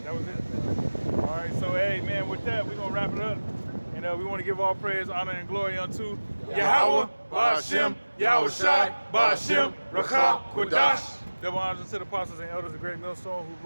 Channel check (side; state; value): both; inverted; correlation -1.00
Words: That was it. All right, so hey, man, with that, we're going to wrap it up. And we want to give all praise, honor, and glory unto Yahweh, Ba'ashem, Yahweh Shai, Ba'ashem, Rakah, Kodash. Double honors to the apostles and elders of Great Millstone who